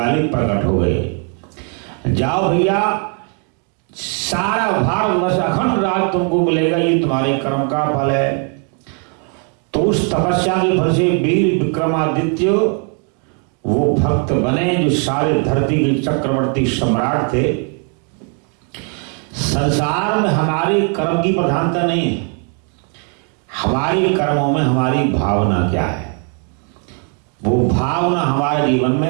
प्रकट हो गए। जाओ भैया, सारा भारतवर्ष अखंड राज तुमको मिलेगा, ये तुम्हारे कर्म का फल है। तो उस तपस्या के फल से वीर विक्रमादित्य वो भक्त बने जो सारे धरती के चक्रवर्ती सम्राट थे। संसार में हमारे कर्म की प्रधानता नहीं है, हमारे कर्मों में हमारी भावना क्या है। वो भावना हमारे जीवन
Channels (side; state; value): left; quieter; 39.3 dB